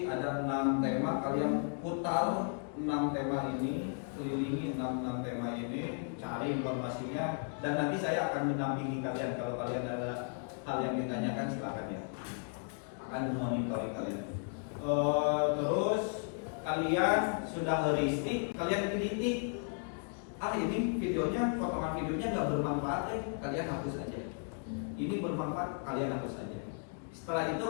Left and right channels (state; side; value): silent; right; 54 dB below the other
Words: ada 6 tema, kalian putar 6 tema ini, kelilingi 6 tema ini, cari informasinya, dan nanti saya akan mendampingi kalian. Kalau kalian ada hal yang ditanyakan silakan ya, akan monitoring kalian. Terus kalian sudah heuristik, kalian kritik. Ini videonya, potongan videonya nggak bermanfaat, kalian hapus aja. Ini bermanfaat, kalian hapus aja. Setelah